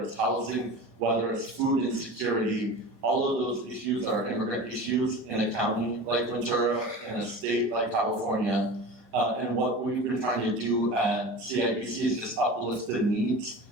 it's housing, whether it's food insecurity, all of those issues are immigrant issues in a county like Ventura, in a state like California. And what we've been trying to do at CIBC is just uplift the needs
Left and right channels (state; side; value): normal; both; correlation 0.34